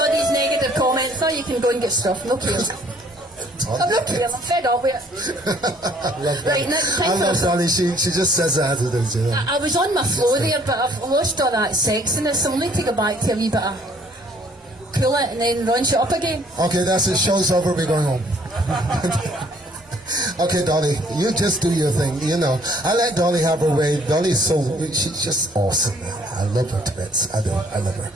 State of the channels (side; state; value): both; normal; correlation 0.60